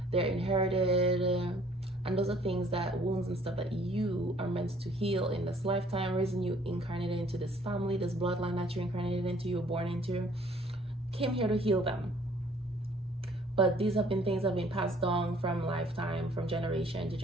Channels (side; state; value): both; normal; correlation 0.59